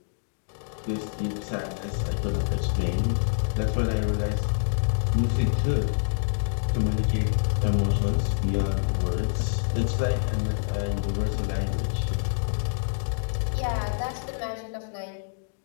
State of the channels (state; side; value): silent; right; digital silence